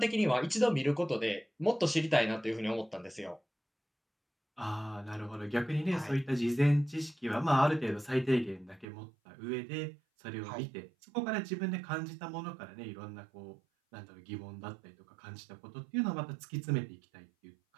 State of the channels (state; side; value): drops out; left; at 8.8 s